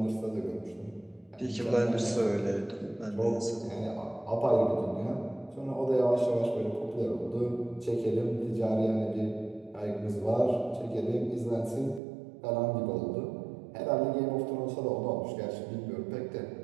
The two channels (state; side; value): drops out; left; at 12.0 s